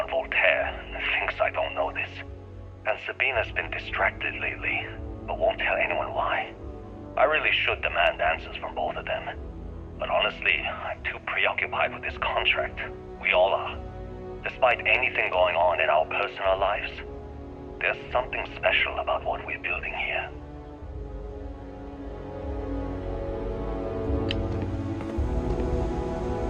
Voltaire and thinks I don't know this. And Sabina's been distracted lately, but won't tell anyone why. I really should demand answers from both of them. But honestly, I'm too preoccupied with this contract. We all are. Despite anything going on in our personal lives, there's something special about what we're building here.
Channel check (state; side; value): identical; both; correlation 1.00